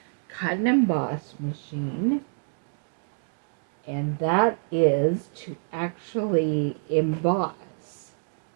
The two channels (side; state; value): left; silent; digital silence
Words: cut and emboss machine, and that is to actually emboss